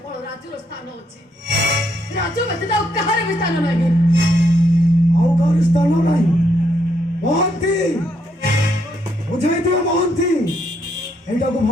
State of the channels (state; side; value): normal; both; correlation 0.75